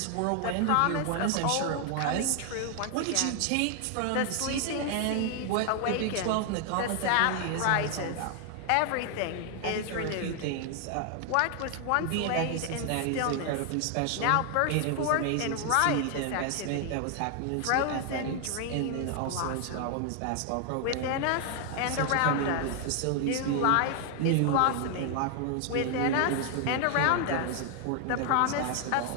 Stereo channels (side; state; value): both; different; correlation 0.00